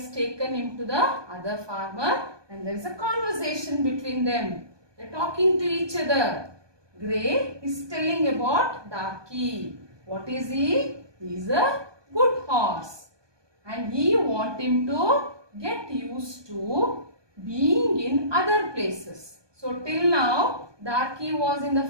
taken him to the other farmer and there is a conversation between them. They are talking to each other. Grey is telling about Darky. What is he? He is a good horse. And he wants him to get used to being in other places. So till now, Darky was in the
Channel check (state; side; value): late; left; 1.2 ms